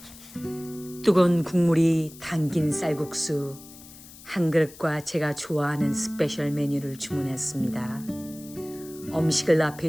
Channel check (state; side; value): noise; left; hiss, 19 dB below the sound